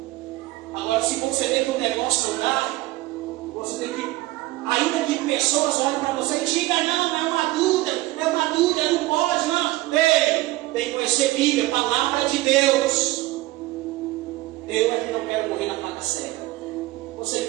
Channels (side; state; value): left; quieter; 18.5 dB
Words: Agora, se você vê que o negócio não dá, você tem que, ainda que pessoas olhem para você e digam, não, é uma dúvida, não pode, não. Ei, tem que conhecer Bíblia, palavra de Deus. Eu aqui não quero morrer na faca cega. Você